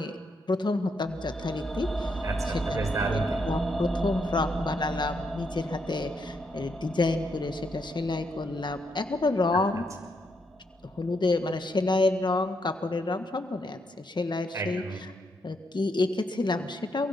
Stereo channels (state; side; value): normal; both; correlation 0.78